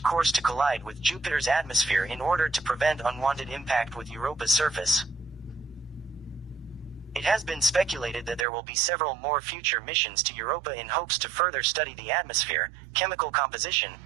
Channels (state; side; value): drops out; left; at 8.5 s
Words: course to collide with Jupiter's atmosphere in order to prevent unwanted impact with Europa's surface. It has been speculated that there will be several more future missions to Europa in hopes to further study the atmosphere, chemical composition,